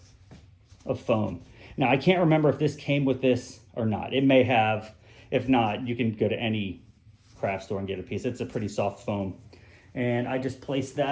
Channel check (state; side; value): identical; both; correlation 1.00